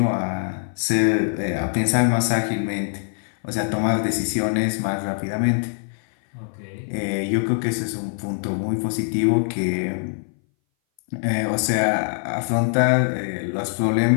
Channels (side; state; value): right; silent; 60 dB below the other